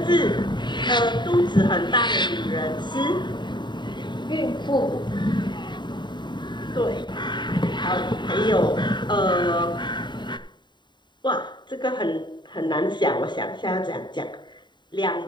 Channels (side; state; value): right; late; 0.22 ms